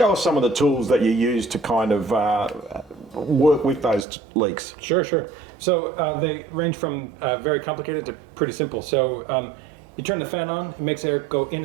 us some of the tools that you use to kind of work with those leaks. Sure. So they range from very complicated to pretty simple. So you turn the fan on, it makes air go in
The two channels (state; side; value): drops out; left; at 4.0 s